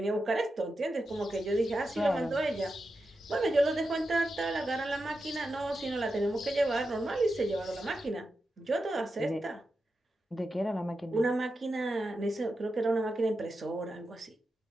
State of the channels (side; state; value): both; normal; correlation 0.89